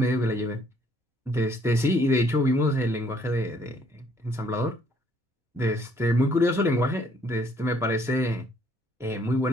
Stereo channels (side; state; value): both; normal; correlation 0.64